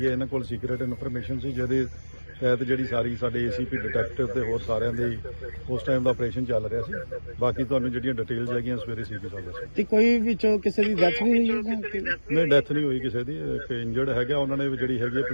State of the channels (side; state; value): both; inverted; correlation -1.00